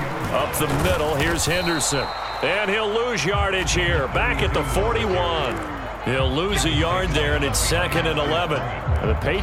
Up the middle, here's Henderson. And he'll lose yardage here. Back at the 41. He'll lose a yard there, and it's 2nd and 11. The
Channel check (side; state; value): both; identical; correlation 1.00